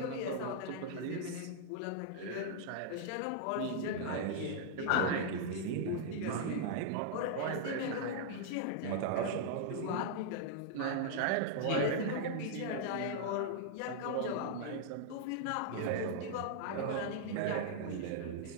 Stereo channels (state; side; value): different; both; correlation -0.01